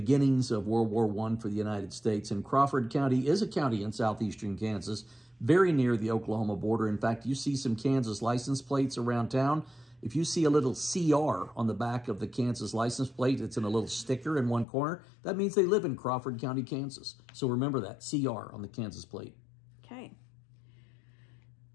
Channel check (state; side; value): drops out; right; at 14.7 s